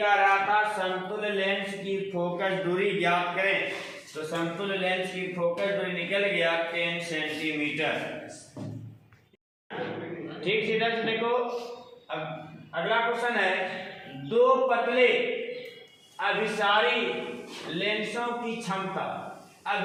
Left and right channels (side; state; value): both; identical; correlation 1.00